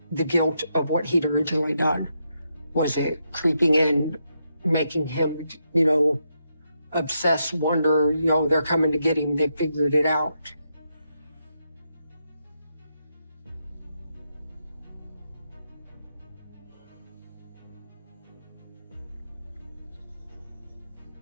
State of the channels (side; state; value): both; inverted; correlation -0.82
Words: the guilt of what he'd originally done? Was it creeping in making him, obsess, wonder, they're coming to get him. They figured it out.